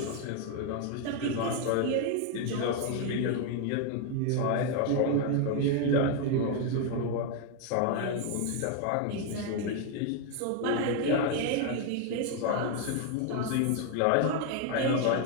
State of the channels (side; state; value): both; different; correlation 0.01